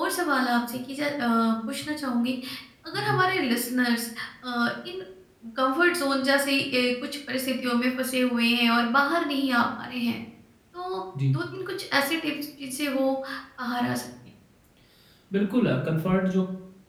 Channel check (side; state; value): both; identical; correlation 1.00